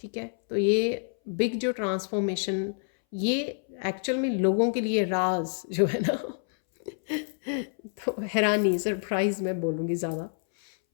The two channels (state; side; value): silent; right; 60 dB below the other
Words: है, तो ये बिग जो ट्रांसफॉर्मेशन, ये एक्चुअल में लोगों के लिए राज जो है ना तो हैरानी, सरप्राइज मैं बोलूँगी ज़्यादा।